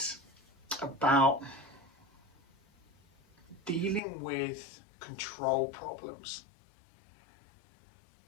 about dealing with control problems.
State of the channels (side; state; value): right; drops out; at 4.0 s